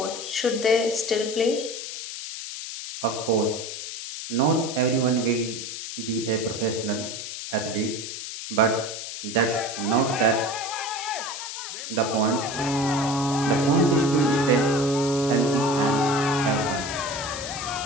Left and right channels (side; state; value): left; noise; hiss, 8 dB below the sound